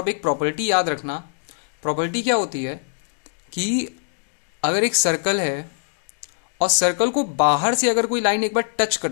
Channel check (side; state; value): right; silent; digital silence